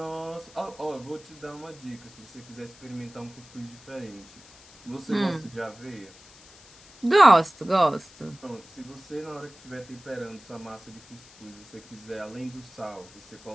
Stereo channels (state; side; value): noise; left; hiss, 22 dB below the sound